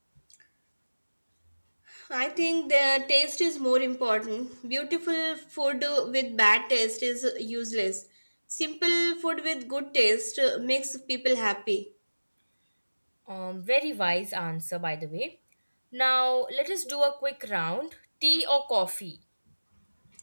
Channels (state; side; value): inverted; both; correlation -1.00